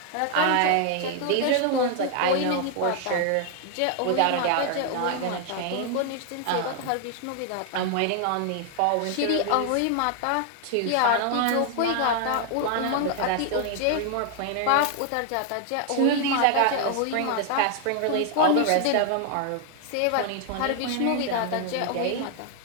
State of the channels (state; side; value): different; both; correlation 0.00